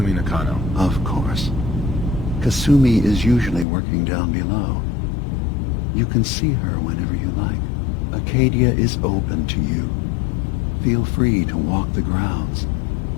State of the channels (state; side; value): drops out; right; at 3.7 s